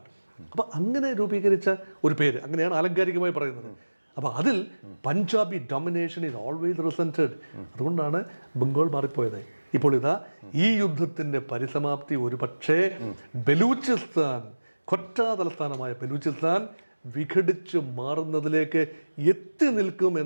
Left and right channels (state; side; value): inverted; both; correlation -1.00